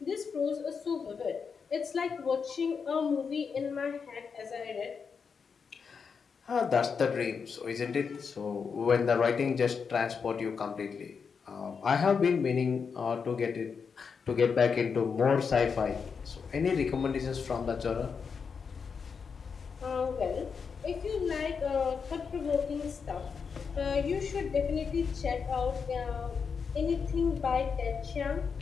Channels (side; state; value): right; quieter; 5.9 dB